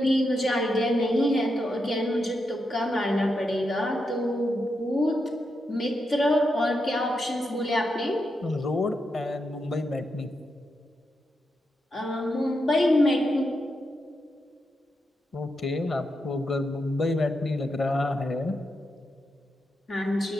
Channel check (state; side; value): normal; both; correlation 0.85